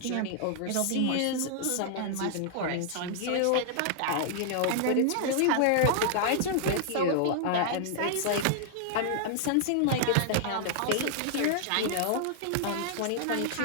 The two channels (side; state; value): both; different; correlation -0.01